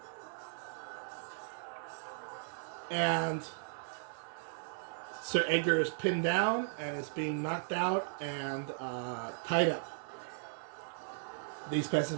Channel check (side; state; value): left; silent; 53 dB below the other